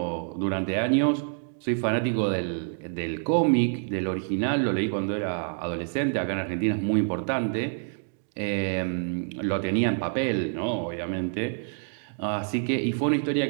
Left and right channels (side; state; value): left; silent; 60 dB below the other